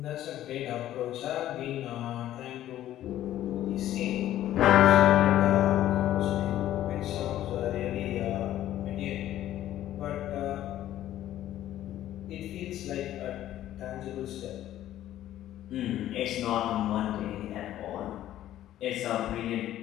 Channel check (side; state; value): right; quieter; 12.9 dB